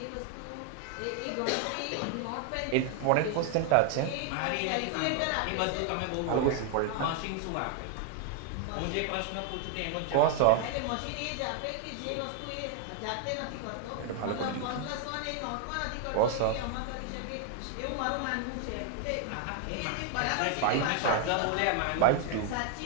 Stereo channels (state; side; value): different; both; correlation 0.01